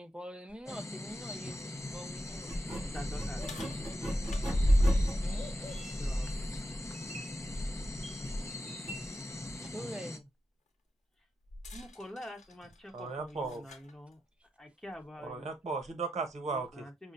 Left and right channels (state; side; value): normal; both; correlation 0.88